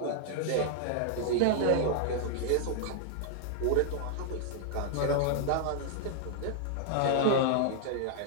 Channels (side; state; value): both; different; correlation -0.01